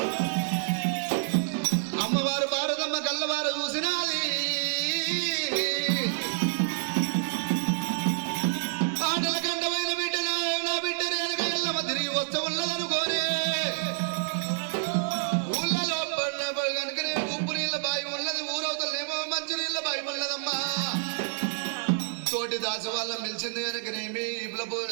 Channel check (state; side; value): silent; left; digital silence